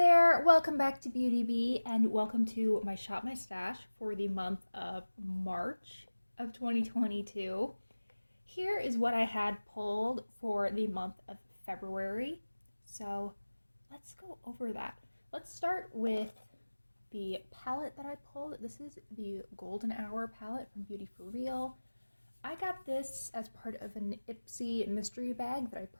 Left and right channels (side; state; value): both; inverted; correlation -1.00